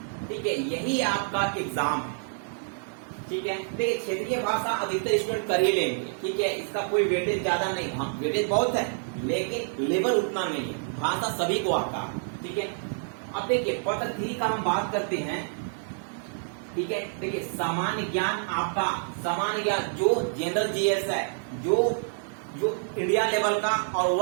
ठीक है। यही आपका एग्जाम है, ठीक है। देखिए क्षेत्रीय भाषा अधिकतर स्टूडेंट कर ही लेंगे, ठीक है। इसका कोई वेटेज ज्यादा नहीं, हाँ वेटेज बहुत है, लेकिन लेवल उतना नहीं है। भाषा सभी को आता है, ठीक है। अब देखिए पत्र 3 का हम बात करते हैं, ठीक है। देखिए सामान्य ज्ञान, आपका सामान्य ज्ञान जो जनरल जीएस है, जो इंडिया लेवल का और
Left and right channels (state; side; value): silent; left; digital silence